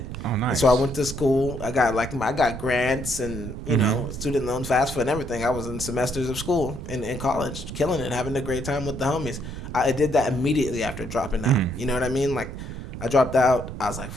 Oh, nice. And so I went to school. I got grants and you know, student loans, FAFSA, and everything. I was in semesters of school in college, killing it, having a great time with the homies. I did that immediately after dropping out. You know what I mean? Like, I dropped out. I was like,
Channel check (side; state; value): right; noise; rumble, 8 dB below the sound